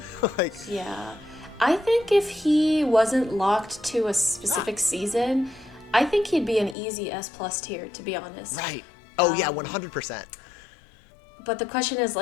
Like, Yeah. I think if he wasn't locked to a specific season, I think he'd be an easy S plus tier, to be honest. right. Oh yeah, 100%. But the question is,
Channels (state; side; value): drops out; right; at 6.8 s